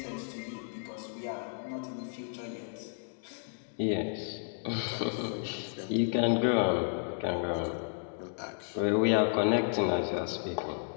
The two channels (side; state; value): right; silent; digital silence